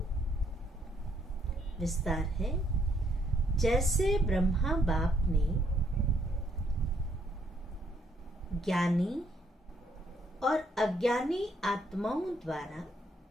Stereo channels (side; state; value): both; normal; correlation 0.70